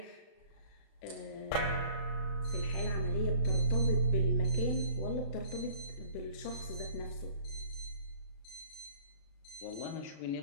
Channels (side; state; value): right; late; 36 ms